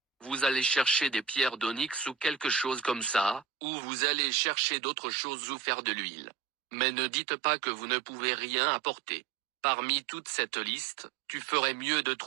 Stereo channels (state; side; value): drops out; left; at 3.5 s